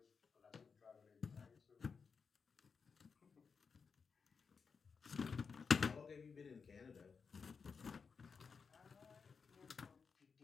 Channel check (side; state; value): right; quieter; 5.5 dB